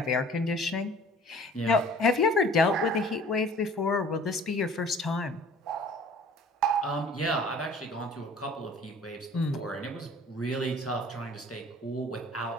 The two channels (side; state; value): both; normal; correlation 0.49